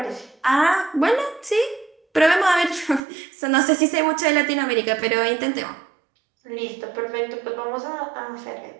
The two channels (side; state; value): left; drops out; at 3.0 s